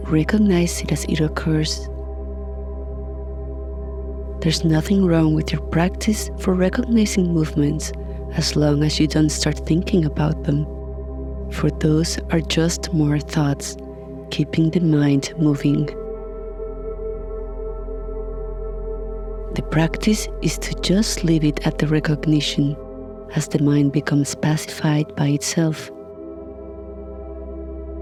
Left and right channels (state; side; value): identical; both; correlation 1.00